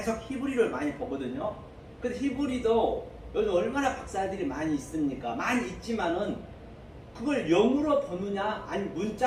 히브리를 많이 보거든요. 근데 히브리도 요즘 얼마나 박사들이 많이 있습니까? 많이 있지만은 그걸 영으로 보느냐 아니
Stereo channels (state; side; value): identical; both; correlation 1.00